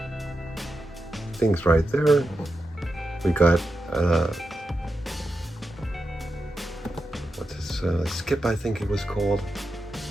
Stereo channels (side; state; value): both; normal; correlation 0.89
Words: things right there. We got what's this, Skip, I think it was called,